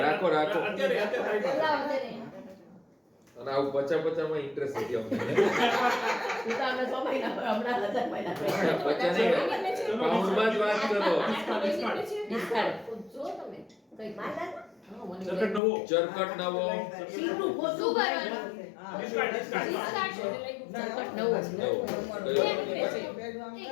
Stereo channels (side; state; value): right; drops out; at 15.6 s